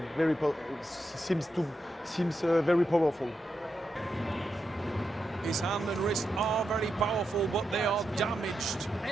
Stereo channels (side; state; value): both; normal; correlation 0.86